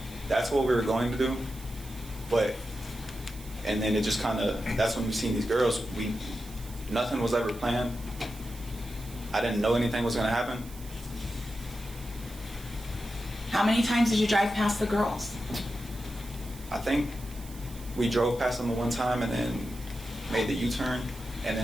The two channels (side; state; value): right; noise; hiss, 18 dB below the sound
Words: That's what we were going to do, and then it just kind of, that's when we seen these girls. Nothing was ever planned. I didn't know anything was going to happen. How many times did you drive past the girls? I think we drove past them the one time and then made the U-turn, and